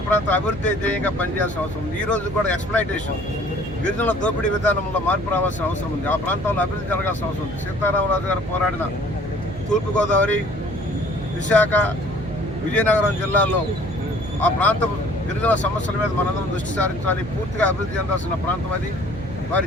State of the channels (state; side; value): noise; right; hum, 11 dB below the sound